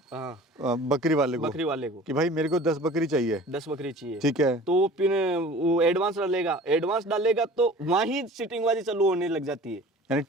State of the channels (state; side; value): normal; both; correlation 0.43